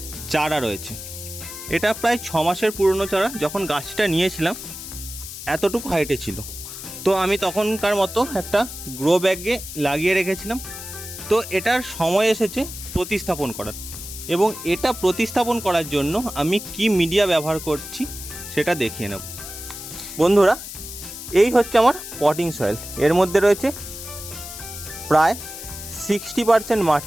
চারা রয়েছে। এটা প্রায় 6 মাসের পুরনো চারা। যখন গাছটা নিয়েছিলাম এতটুকু হাইটে ছিল, তো আমি তখনকার মতো একটা গ্রো ব্যাগে লাগিয়ে রেখেছিলাম। তো এটার সময় এসেছে প্রতিস্থাপন করার, এবং এটা প্রতিস্থাপন করার জন্য আমি কি মিডিয়া ব্যবহার করছি সেটা দেখিয়ে নেব। বন্ধুরা, এই হচ্ছে আমার পটিং সয়েল। এর মধ্যে রয়েছে প্রায় 60%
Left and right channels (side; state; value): left; noise; hiss, 10 dB below the sound